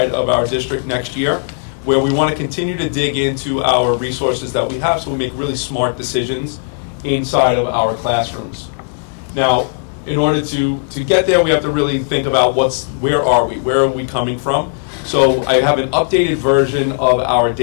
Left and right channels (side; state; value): right; silent; digital silence